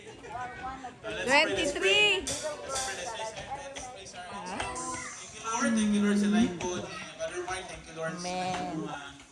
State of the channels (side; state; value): both; identical; correlation 1.00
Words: 23. Thank you Lord sa life po. Brother Mark, thank you Lord sa Amen.